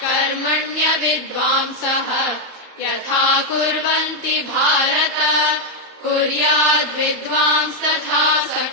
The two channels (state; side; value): late; left; 32 ms